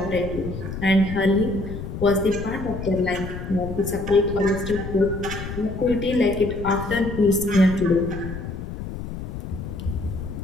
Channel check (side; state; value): left; noise; rumble, 8 dB below the sound